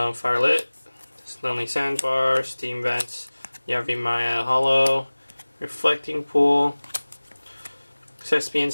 Lonely Sandbar, Steam Vents, Yavimaya Hollow, Reflecting Pool, Thespian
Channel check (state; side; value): inverted; both; correlation -1.00